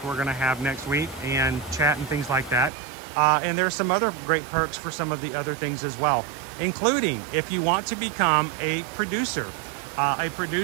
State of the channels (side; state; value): left; drops out; at 2.7 s